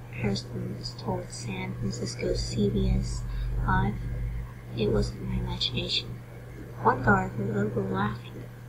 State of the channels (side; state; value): both; identical; correlation 1.00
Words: Harrison told San Francisco CBS 5. It wasn't my imagination. One guard heard a little girl laughing.